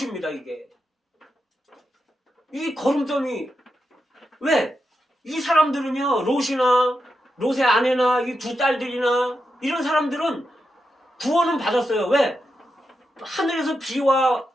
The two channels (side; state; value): both; normal; correlation 0.87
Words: 이게 이 거름더미. 왜? 이 사람들은요 롯의 아내나 이 두 딸들이나 이런 사람들은 구원은 받았어요. 왜? 하늘에서 비와